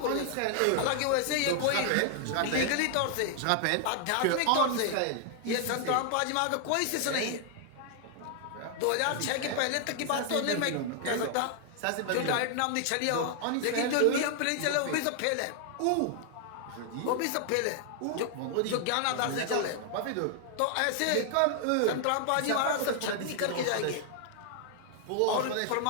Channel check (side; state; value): both; different; correlation 0.00